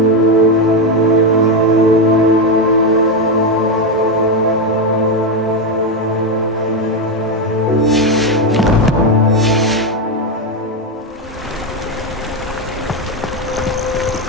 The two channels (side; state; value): both; normal; correlation 0.08